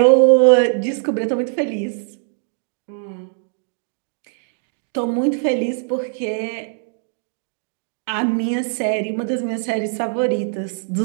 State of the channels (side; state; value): left; silent; 60 dB below the other